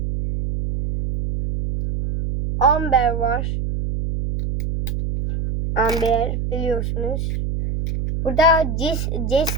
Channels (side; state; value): right; noise; hum, 2 dB below the sound